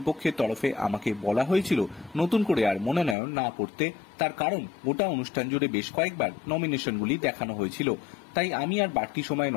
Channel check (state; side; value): drops out; right; at 3.2 s